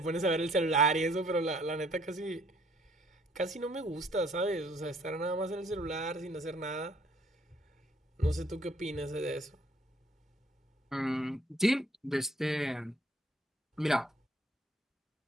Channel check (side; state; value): both; normal; correlation 0.62